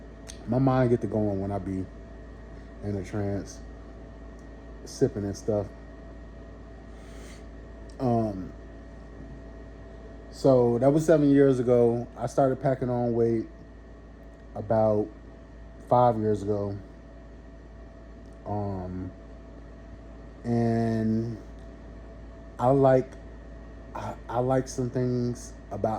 my mind get to going when I be in a trance, sipping and stuff. So that was 7 years ago. I started packing on weight about 5 years ago. And I like I like some things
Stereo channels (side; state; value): both; identical; correlation 1.00